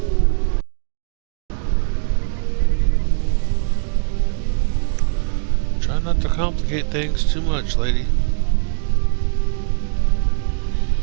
Try not to complicate things too much, lady.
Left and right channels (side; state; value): left; silent; digital silence